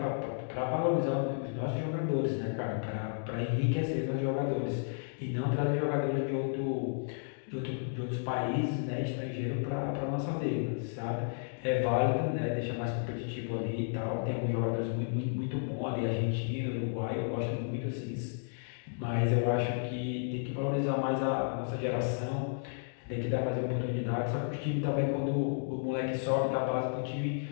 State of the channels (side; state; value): right; silent; digital silence